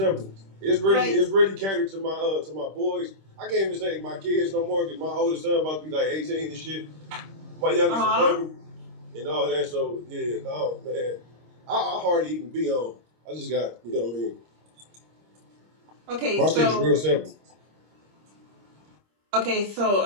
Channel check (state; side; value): late; left; 26 ms